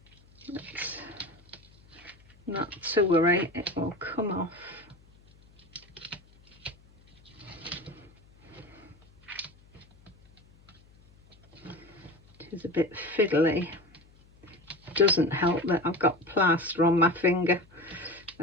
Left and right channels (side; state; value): left; noise; hum, 28 dB below the sound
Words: But not to worry, it will come off. It is a bit fiddly. Doesn't help that I've got plaster on my finger.